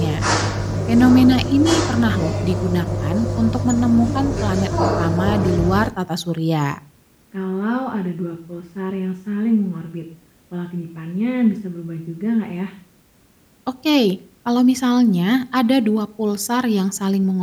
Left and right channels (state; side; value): identical; both; correlation 1.00